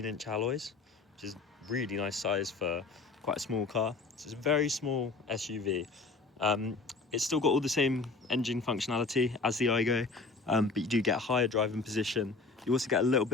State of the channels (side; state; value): right; quieter; 3.9 dB